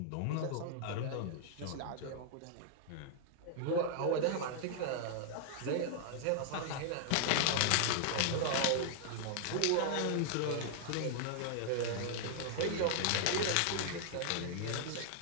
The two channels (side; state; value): both; different; correlation -0.01